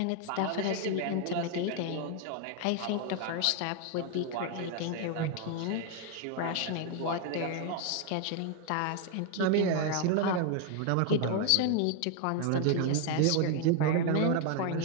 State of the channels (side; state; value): both; different; correlation 0.01